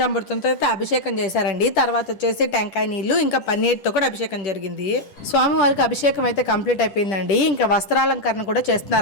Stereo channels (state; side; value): late; right; 10 ms